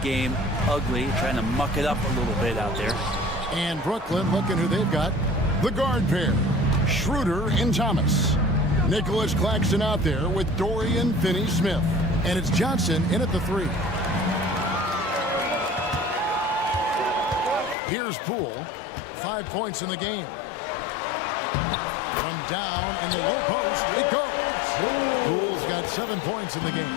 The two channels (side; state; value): right; drops out; at 17.8 s